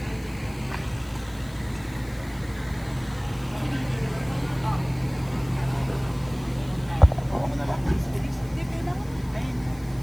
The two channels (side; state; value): left; noise; hiss, 23 dB below the sound